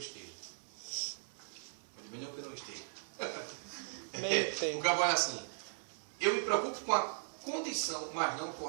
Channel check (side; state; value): left; silent; 52 dB below the other